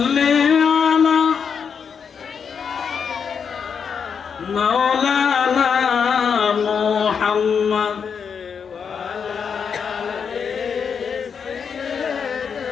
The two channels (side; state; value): right; quieter; 6.6 dB